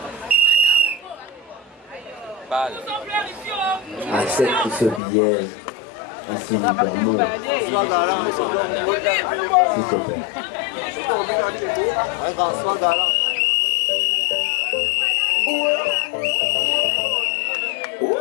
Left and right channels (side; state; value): right; drops out; at 5.0 s